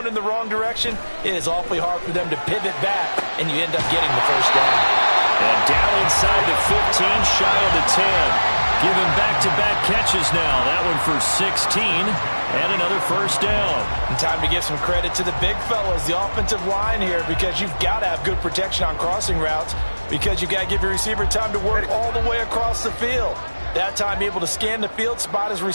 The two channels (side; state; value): both; inverted; correlation -1.00